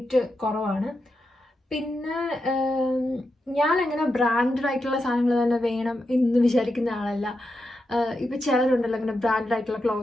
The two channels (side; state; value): both; normal; correlation 0.87